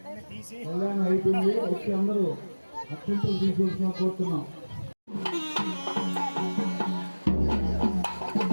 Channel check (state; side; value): inverted; both; correlation -1.00